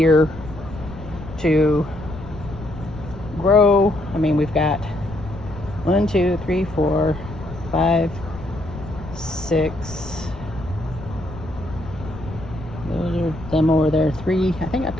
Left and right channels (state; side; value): noise; left; rumble, 13 dB below the sound